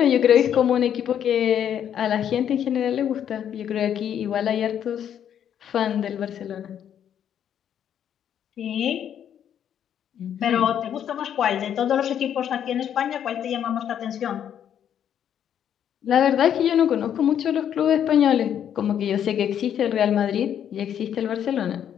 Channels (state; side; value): quieter; right; 9.4 dB